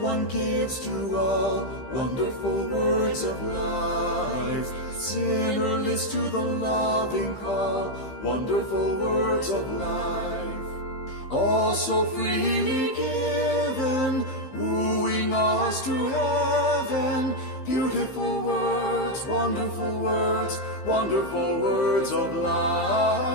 One gives to all wonderful words of life. Sinner list to the loving call, wonderful words of life. All so freely given, wooing us to heaven. Beautiful words, wonderful words, wonderful words of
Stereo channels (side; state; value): right; late; 15 ms